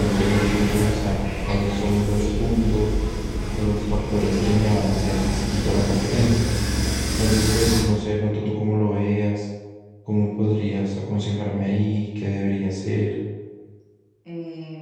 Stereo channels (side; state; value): both; identical; correlation 1.00